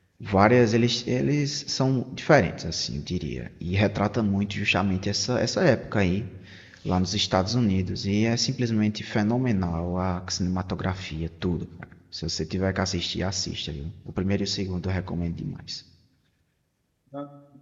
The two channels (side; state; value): both; identical; correlation 1.00